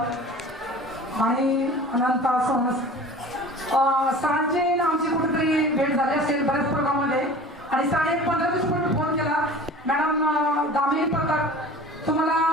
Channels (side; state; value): both; normal; correlation 0.41